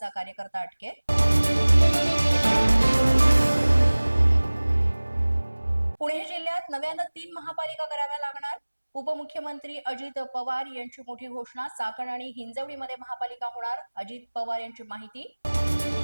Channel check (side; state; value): both; inverted; correlation -1.00